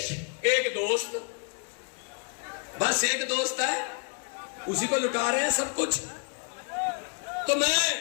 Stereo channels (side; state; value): right; quieter; 38.4 dB